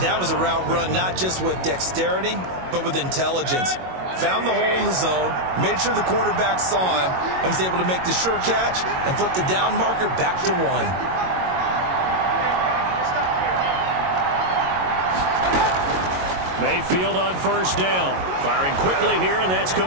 That was a route run not just with dexterity, but with intelligence. Found the hole in the zone, made sure the quarterback saw him, and was able to make the sure catch and flip the down marker back to 1. Mayfield on first down. Firing quickly here, and that's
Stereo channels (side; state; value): left; late; 22 ms